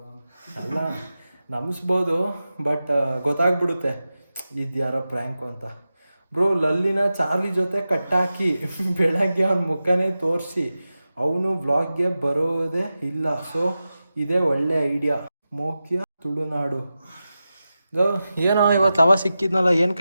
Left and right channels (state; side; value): inverted; both; correlation -0.93